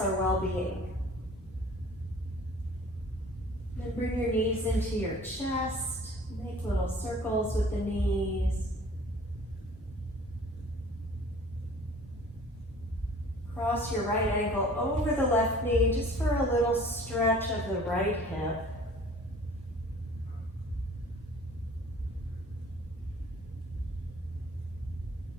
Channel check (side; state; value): both; normal; correlation 0.49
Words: well-being. Then bring your knees into your chest. Make little circles with the knees. Cross your right ankle over the left knee just for a little stretch of the right hip.